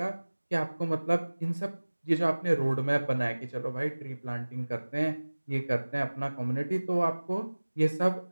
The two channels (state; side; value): inverted; both; correlation -1.00